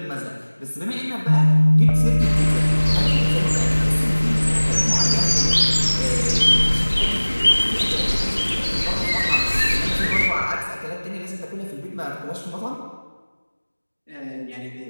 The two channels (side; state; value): both; inverted; correlation -1.00